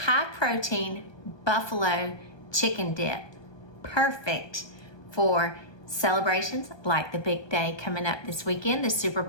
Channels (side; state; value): right; late; 1.2 ms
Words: protein buffalo chicken dip. Perfect for celebrations like the big day coming up this weekend, the Super